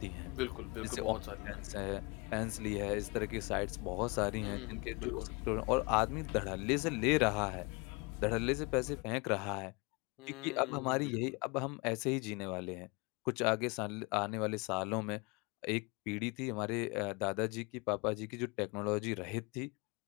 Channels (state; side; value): quieter; right; 28.7 dB